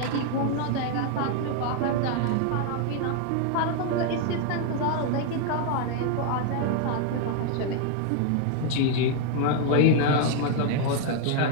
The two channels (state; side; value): different; both; correlation 0.00